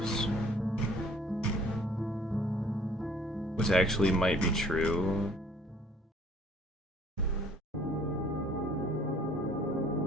which actually might be true.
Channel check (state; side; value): normal; both; correlation 0.56